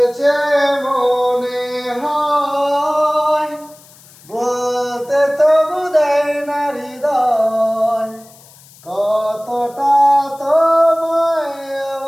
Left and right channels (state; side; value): noise; left; hiss, 24 dB below the sound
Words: মনে হয়, বলতে তবু দেয় না হৃদয়, কতটা তোমায়